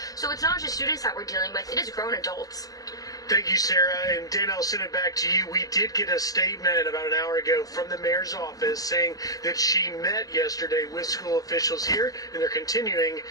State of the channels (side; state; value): right; late; 0.17 ms